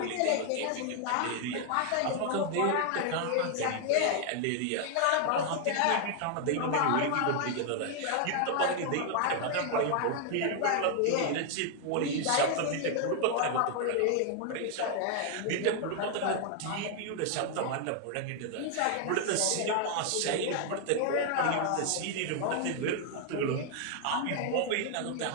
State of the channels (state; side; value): different; both; correlation 0.00